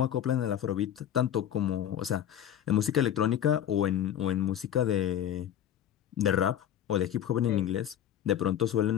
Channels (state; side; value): quieter; right; 10.3 dB